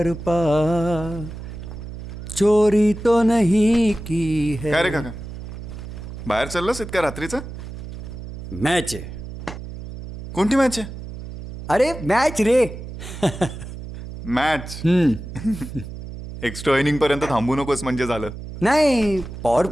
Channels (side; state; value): right; noise; hum, 11 dB below the sound